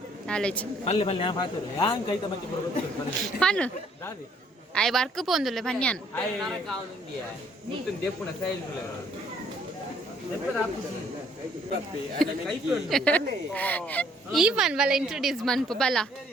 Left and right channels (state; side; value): normal; both; correlation 0.63